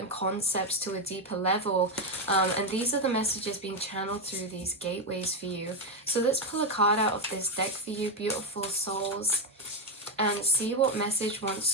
concepts to a deeper level, and these are the messages being channeled through these gateways for you. So let's pull a card out of this deck for you beautiful souls and see what message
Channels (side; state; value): both; normal; correlation 0.07